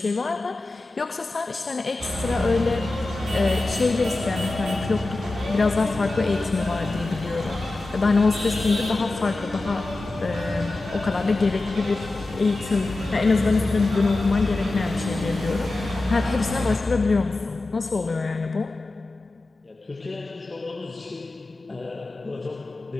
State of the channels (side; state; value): right; quieter; 3.0 dB